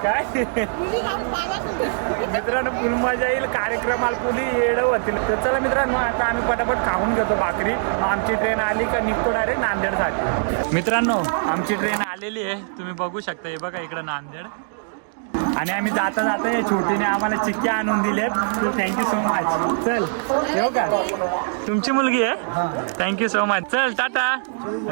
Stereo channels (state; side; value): silent; left; digital silence